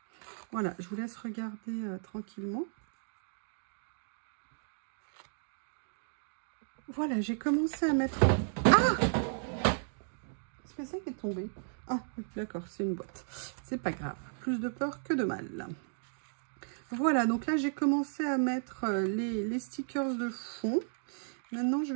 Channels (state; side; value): silent; left; digital silence